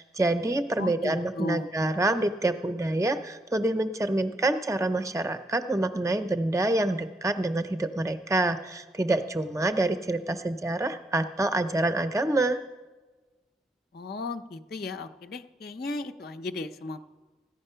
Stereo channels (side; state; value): both; normal; correlation 0.75